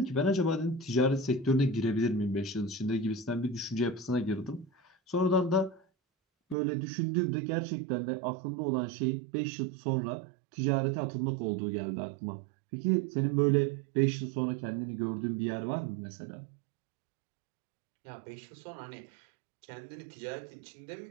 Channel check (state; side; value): drops out; left; at 6.6 s